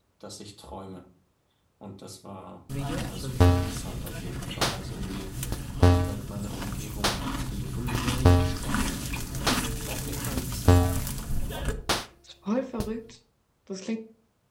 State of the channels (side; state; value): both; identical; correlation 1.00